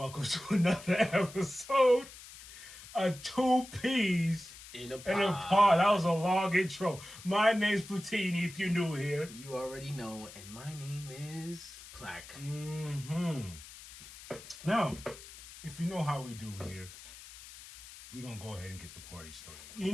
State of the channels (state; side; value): noise; left; hiss, 16 dB below the sound